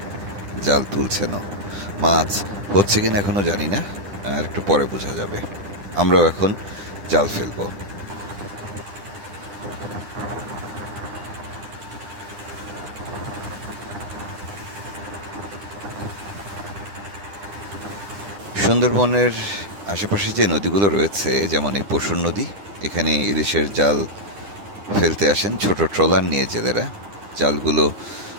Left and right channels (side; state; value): left; late; 10 ms